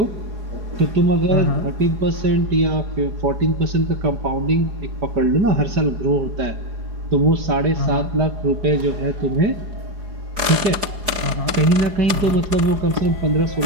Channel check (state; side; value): late; left; 4.8 ms